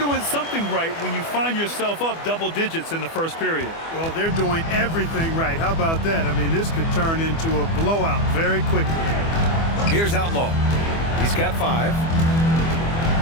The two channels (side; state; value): right; late; 24 ms